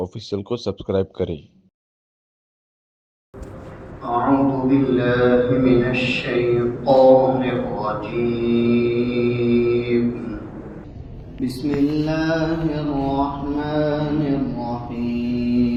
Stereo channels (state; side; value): identical; both; correlation 1.00